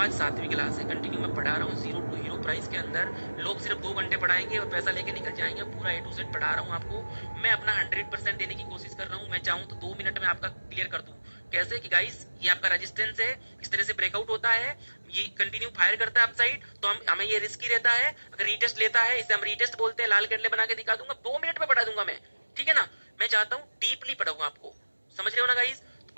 7वीं क्लास है, कंटिन्यू मैं पढ़ा रहा हूँ, 0 to हीरो प्राइस के अंदर। लोग सिर्फ 2 घंटे पढ़ाएंगे और पैसा लेके निकल जाएंगे, पूरा A to Z पढ़ा रहा हूँ आपको। मैं अपना 100% देने की कोशिश कर रहा हूँ। मैं चाहूँ तो 2 मिनट में आपका क्लियर कर दूं। कैसे कि गाइस, ये आपका रेजिस्टेंस है, इस तरह से ब्रेकआउट होता है, ये कंटिन्यू फायर करता है अपसाइड, तो हमें ये रिस्की रहता है। अगर रीटेस्ट लेता है, इसे हम रीटेस्ट बोलते हैं, लाल कैंडल बना के दिखा दूंगा, 2 मिनट में पढ़ा दूंगा मैं, ठीक है ना? मैं चाहता हूँ डीपली पढ़ाऊंगा आपको, समझ रहे हो ना गाइस?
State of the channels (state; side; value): inverted; both; correlation -1.00